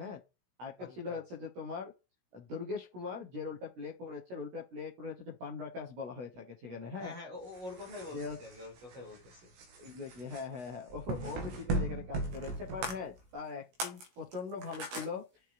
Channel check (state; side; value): late; left; 16 ms